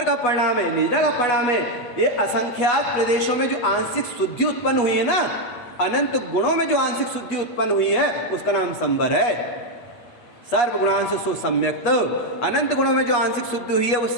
का परिणाम है, निद्रा का परिणाम है। ये असंख्यात प्रदेशों में जो आंशिक शुद्धि उत्पन्न हुई है ना, अनंत गुणों में जो आंशिक शुद्धि उत्पन्न हुई है, उसका नाम संबर है। सर्व गुणांशु सो सम्यक्त, अनंत गुणों में जो आंशिक शुद्धि हुई है वो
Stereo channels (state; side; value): late; right; 8.3 ms